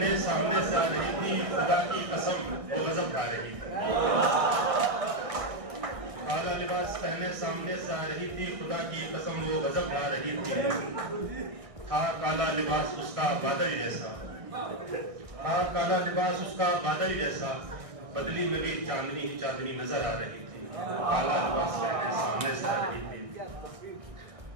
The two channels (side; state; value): left; late; 1.6 ms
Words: सामने से आ रही थी, खुदा की कसम वो गजब खा रही थी। काला लिबास पहने सामने से आ रही थी, खुदा की कसम वो गजब खा रही थी। था काला लिबास उसका बादल जैसा, था काला लिबास उसका बादल जैसा, बदली में भी चांदनी ही चांदनी नजर आ रही थी। काला लिबास पहने सामने से आ रही थी।